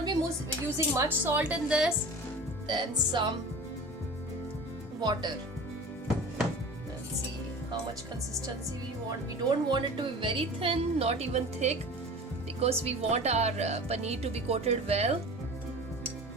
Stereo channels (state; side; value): normal; both; correlation 0.38